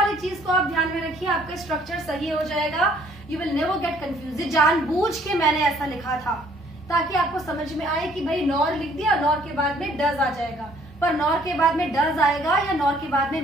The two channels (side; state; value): both; normal; correlation 0.61